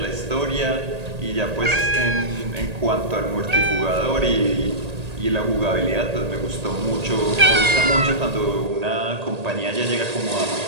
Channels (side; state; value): left; late; 1.8 ms